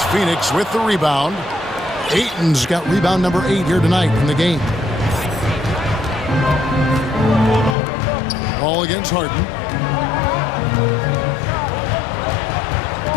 Phoenix with the rebound. Ayton's got rebound number 8 here tonight in the game. Ball against Harden.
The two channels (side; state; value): right; drops out; at 7.8 s